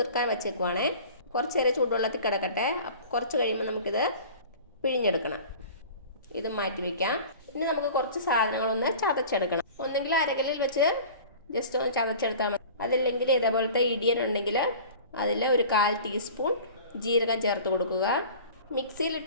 വെച്ചേക്കുവാണേ. കുറച്ച് നേരം ചൂടുവെള്ളത്തിൽ കിടക്കട്ടെ. കുറച്ച് കഴിയുമ്പോൾ നമുക്കിത് പിഴിഞ്ഞെടുക്കണം. ഇത് മാറ്റി വയ്ക്കാം. ഇനി നമുക്ക് കുറച്ച് സാധനങ്ങളൊന്ന് ചതച്ചെടുക്കണം. ഒന്നെങ്കിൽ അരകല്ലിൽ വെച്ച് ജസ്റ്റ് ഒന്ന് ചതച്ചെടുത്താൽ മതി. അതില്ലെങ്കിൽ ഇതേപോലത്തെ ഇടിയൻ ഉണ്ടെങ്കിൽ അതിൽ ഒരു 1/4 ടീസ്പൂൺ ജീരകം ചേർത്ത് കൊടുക്കുക.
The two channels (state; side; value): inverted; both; correlation -0.41